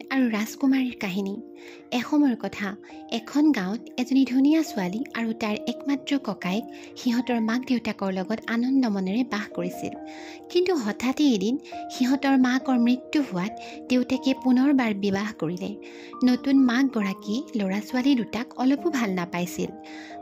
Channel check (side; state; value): both; identical; correlation 1.00